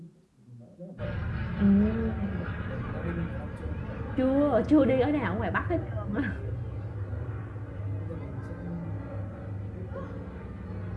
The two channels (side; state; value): both; identical; correlation 1.00